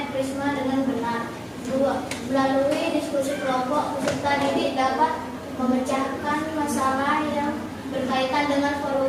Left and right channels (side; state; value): both; identical; correlation 1.00